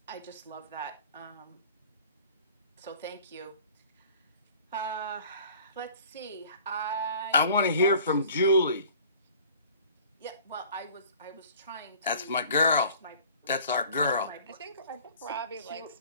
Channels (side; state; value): both; inverted; correlation -0.49